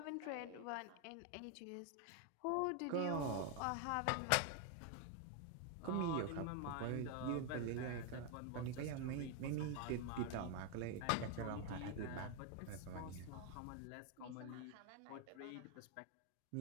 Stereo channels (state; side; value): different; both; correlation 0.01